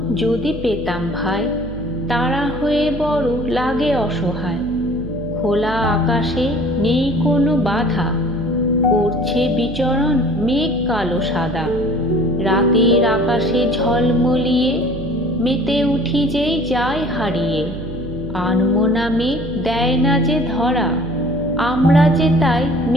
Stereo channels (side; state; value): right; noise; hum, 10 dB below the sound